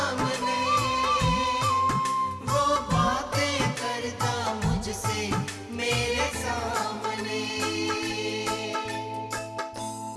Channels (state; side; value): identical; both; correlation 1.00